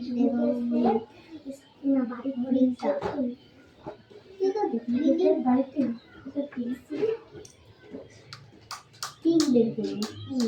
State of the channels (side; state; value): both; identical; correlation 1.00